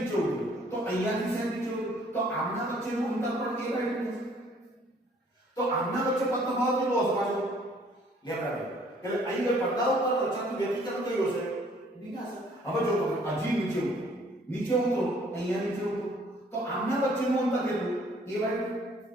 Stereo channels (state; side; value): normal; both; correlation 0.60